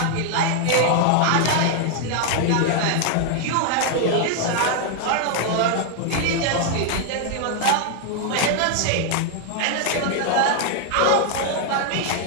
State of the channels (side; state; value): both; different; correlation 0.00